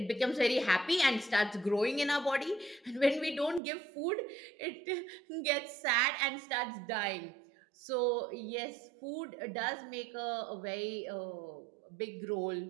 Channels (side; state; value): left; drops out; at 3.6 s